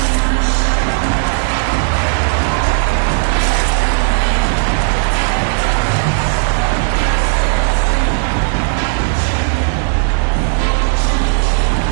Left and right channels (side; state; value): left; silent; digital silence